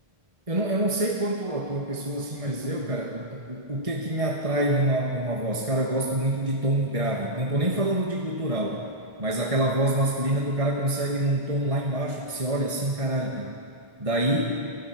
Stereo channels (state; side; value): late; left; 1.6 ms